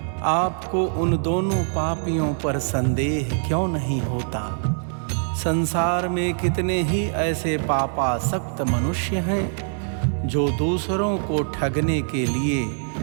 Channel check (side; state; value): left; silent; 63 dB below the other